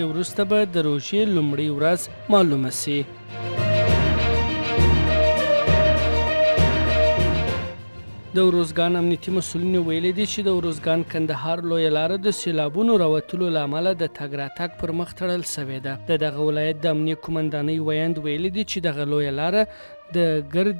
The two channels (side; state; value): both; inverted; correlation -1.00